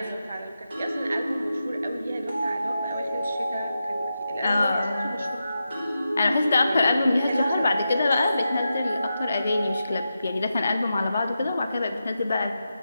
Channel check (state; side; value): inverted; both; correlation -0.89